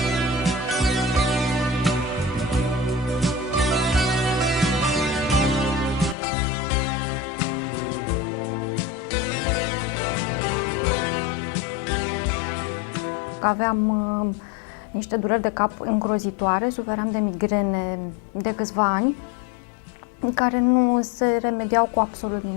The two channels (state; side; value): drops out; right; at 6.2 s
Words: Aveam niște dureri de cap îngrozitoare, suferam de migrene de câțiva ani, care nu se remediau cu absolut